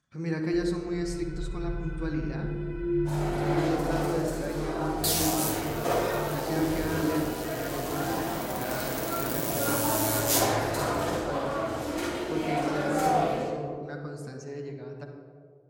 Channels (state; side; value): identical; both; correlation 1.00